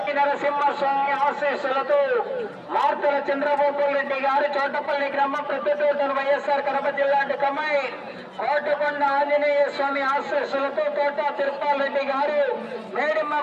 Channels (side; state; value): both; identical; correlation 1.00